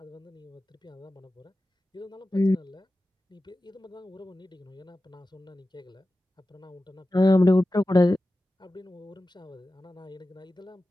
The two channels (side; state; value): both; normal; correlation 0.94